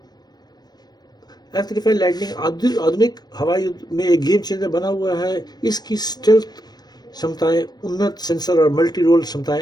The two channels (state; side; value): late; right; 0.19 ms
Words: F-35 लाइटनिंग आधुनिक हवाई युद्ध में एक गेम चेंजर बना हुआ है। इसकी स्टेल्थ क्षमताएं, उन्नत सेंसर और मल्टी रोल